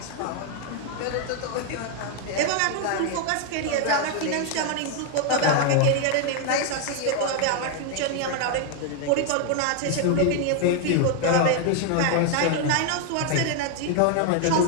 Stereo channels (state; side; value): different; both; correlation 0.00